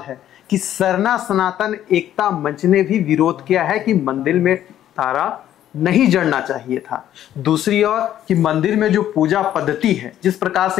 है कि सरना सनातन एकता मंच ने भी विरोध किया है कि मंदिर में तारा नहीं जड़ना चाहिए था। दूसरी ओर कि मंदिर में जो पूजा पद्धति है, जिस प्रकार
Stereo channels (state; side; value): quieter; right; 11.6 dB